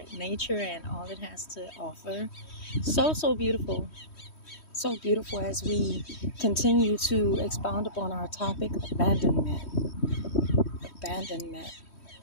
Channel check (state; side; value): late; right; 3.1 ms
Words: and all it has to offer. So beautiful. So beautiful as we continue to expound upon our topic, abandonment. Abandonment.